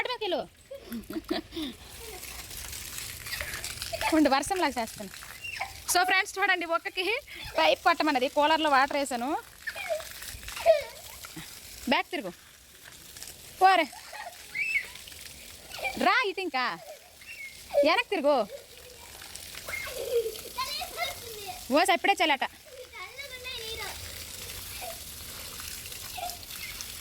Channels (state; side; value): identical; both; correlation 1.00